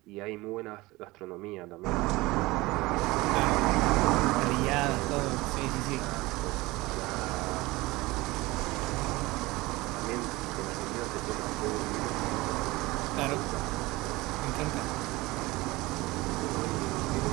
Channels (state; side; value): quieter; left; 20.9 dB